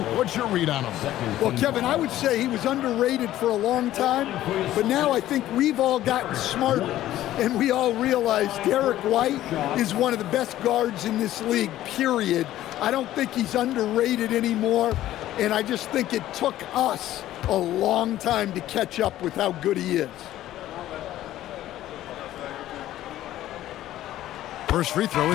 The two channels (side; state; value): right; quieter; 13.8 dB